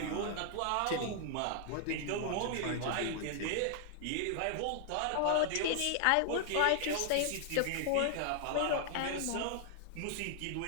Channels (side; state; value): both; different; correlation 0.00